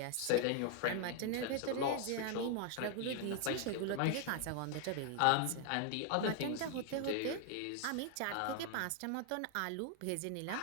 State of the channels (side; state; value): both; different; correlation 0.00